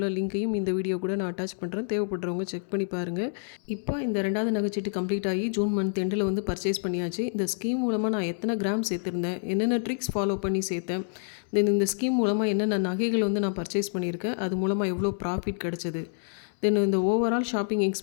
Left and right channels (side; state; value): right; silent; 60 dB below the other